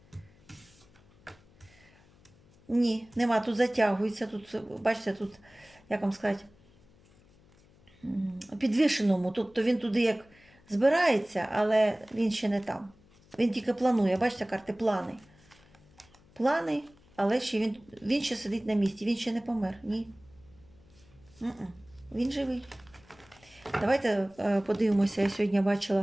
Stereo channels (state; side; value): noise; left; hum, 28 dB below the sound